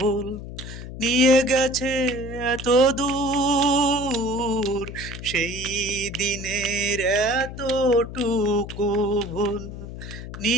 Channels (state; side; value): noise; left; hum, 10 dB below the sound